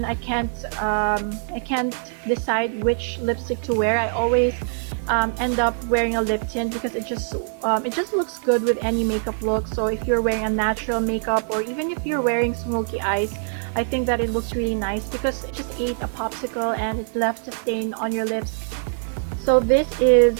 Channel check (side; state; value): left; silent; digital silence